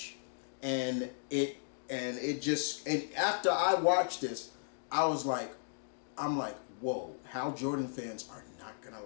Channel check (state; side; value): silent; right; digital silence